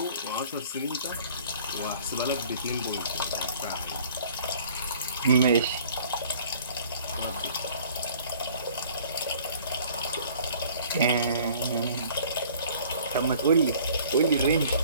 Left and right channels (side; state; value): both; inverted; correlation -0.52